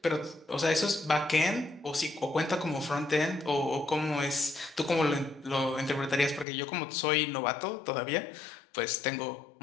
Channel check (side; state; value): right; drops out; at 6.5 s